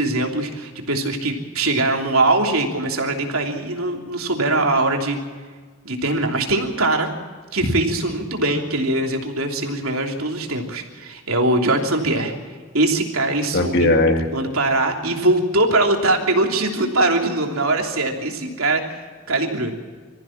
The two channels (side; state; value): both; normal; correlation -0.14